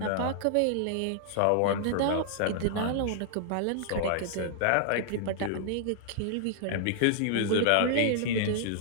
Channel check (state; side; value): different; both; correlation -0.01